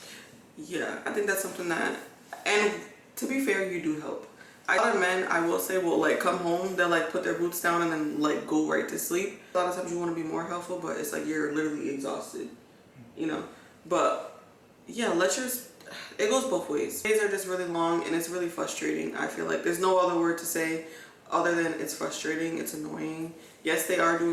Yeah, I think that's something that, and to be fair, you do help. A lot of men, I will say, will like come home, they'll like put their boots down and then like go right to sleep. A lot of times you want to be more helpful, but it's like you're literally exhausted, you know? But yeah, it goes both ways. Days are just really long and it's really frustrating. I feel like there's no other word to say other than it's frustrating, it's annoying. Yes, they are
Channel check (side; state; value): both; identical; correlation 1.00